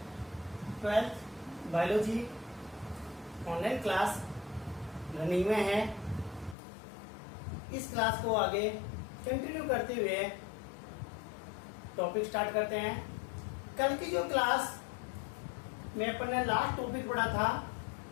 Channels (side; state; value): right; drops out; at 6.6 s